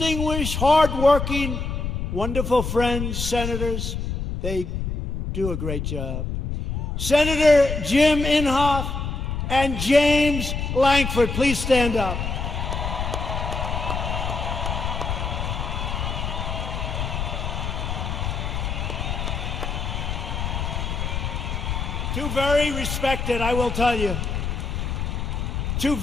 hardworking, wonderful friends, senators. They do a great job. Senator Jim Inhofe and James Lankford, please stand up. Two very respected, I will tell you, 2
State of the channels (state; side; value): noise; left; rumble, 3 dB below the sound